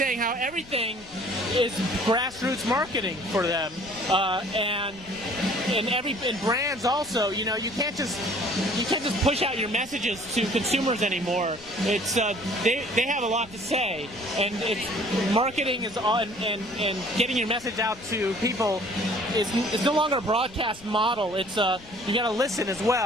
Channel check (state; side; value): noise; left; rumble, 21 dB below the sound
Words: how everything is grassroots marketing for them, and brands also. You can't just push out your messages to consumers anymore. It's they have a lot to say, and it's marketing is on, and getting your message out to people is no longer a broadcast model. It's you got to listen as